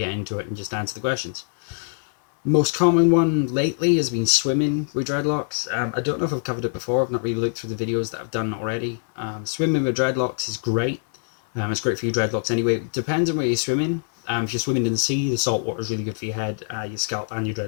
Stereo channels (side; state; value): right; silent; 63 dB below the other